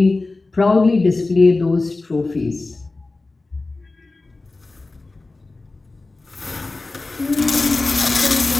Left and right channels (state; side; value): quieter; right; 3.4 dB